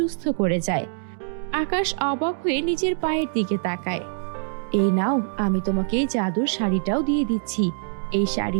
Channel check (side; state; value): left; silent; 62 dB below the other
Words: করে যায়। আকাশ অবাক হয়ে নিজের পায়ের দিকে তাকায়। এই নাও, আমি তোমাকে এই জাদুর শাড়িটাও দিয়ে দিচ্ছি। এই